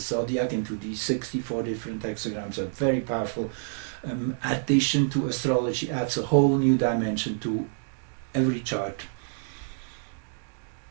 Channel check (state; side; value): silent; left; digital silence